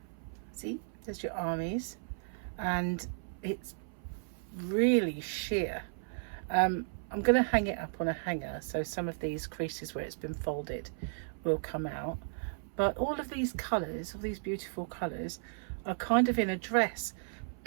See, there's your armies, and it's really sheer. I'm going to hang it up on a hanger, so some of these creases where it's been folded will come out. But all of these colours, all these beautiful colours, are kind of in a dress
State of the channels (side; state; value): left; silent; 55 dB below the other